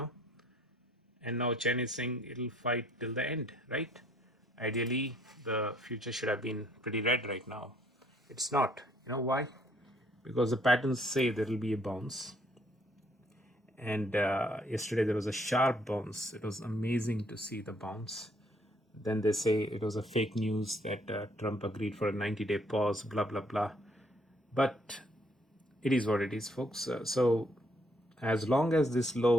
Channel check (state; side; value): normal; both; correlation 0.66